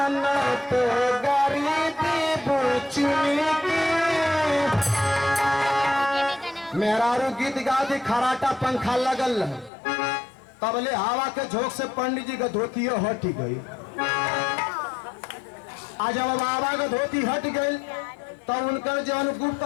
न तो गरीबी बुचनी की। मेहरारू गीत गा दी खराटा पंखा लगल तबले हवा के झोंक से पंडित जी का धोती हट गई। आज जब बाबा का धोती हट गई तब उनका जौन गुप्त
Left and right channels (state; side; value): drops out; right; at 9.7 s